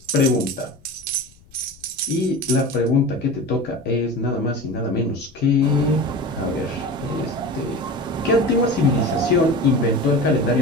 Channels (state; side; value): noise; left; rumble, 27 dB below the sound